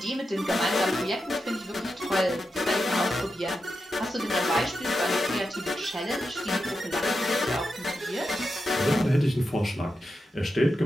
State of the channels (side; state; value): both; normal; correlation 0.88